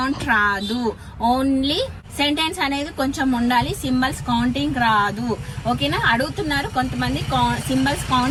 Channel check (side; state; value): both; identical; correlation 1.00